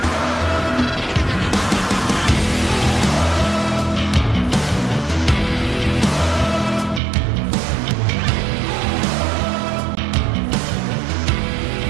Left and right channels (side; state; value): left; drops out; at 7.0 s